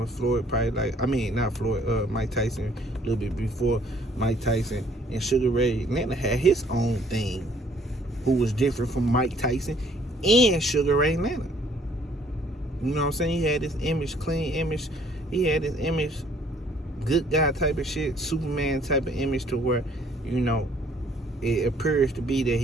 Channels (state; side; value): normal; both; correlation 0.61